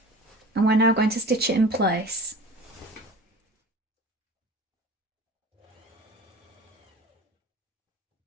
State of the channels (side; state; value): both; normal; correlation 0.39